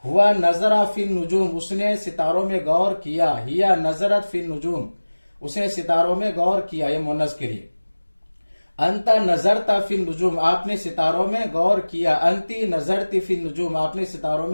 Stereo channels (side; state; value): both; inverted; correlation -1.00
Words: हुआ नजरा फिन नुजूम उसने सितारों में गौर किया। हिया नजरत फिन नुजूम उसने सितारों में गौर किया, ये मुअन्नस के लिए। अंता नजरता फिन नुजूम आपने सितारों में गौर किया। अंती नजरती फिन नुजूम आपने सितारों